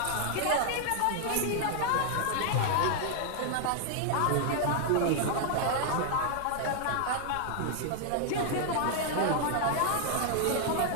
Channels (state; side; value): different; both; correlation 0.00